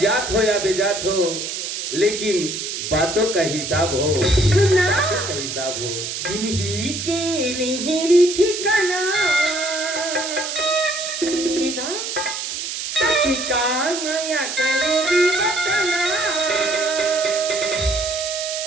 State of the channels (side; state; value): right; noise; hiss, 5 dB below the sound